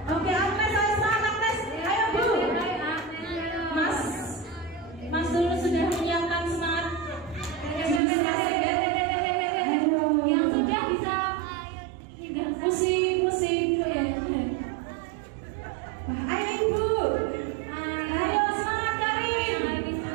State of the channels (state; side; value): drops out; left; at 8.0 s